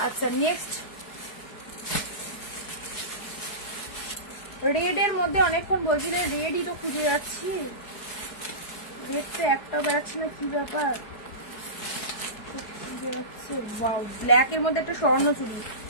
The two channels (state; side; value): late; right; 4.8 ms